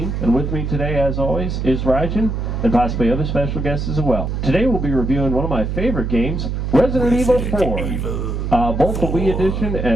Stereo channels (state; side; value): noise; right; hum, 2 dB below the sound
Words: and with me today, as always, is Rajan and possibly other special guests as well. Today we'll be reviewing one of my favorite games, Resident Evil 4. Both the Wii edition